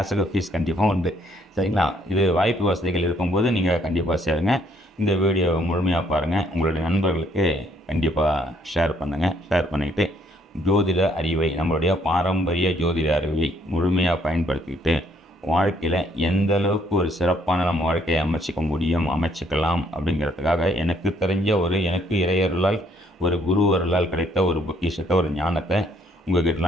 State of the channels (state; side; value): normal; both; correlation 0.67